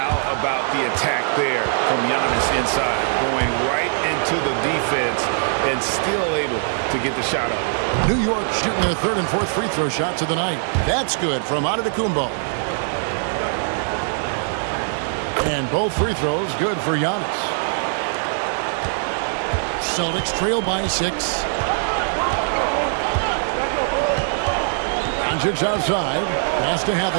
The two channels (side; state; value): left; silent; digital silence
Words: about the attack there from Giannis inside, going right into the defense and still able to get the shot up. New York shooting their third and fourth free throw shots of the night. That's good from Antetokounmpo. And both free throws good for Giannis. Celtics trail by 6. Doncic outside. Pass to